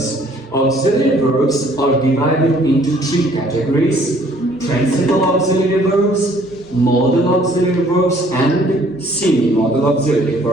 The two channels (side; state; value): both; normal; correlation 0.59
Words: Auxiliary verbs are divided into three categories: principal auxiliary verbs, modal auxiliary verbs, and semi-modal auxiliary